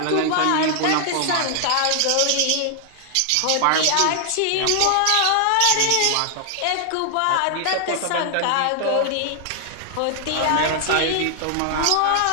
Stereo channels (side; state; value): both; different; correlation 0.00